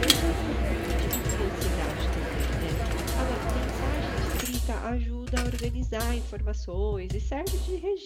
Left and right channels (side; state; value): both; identical; correlation 1.00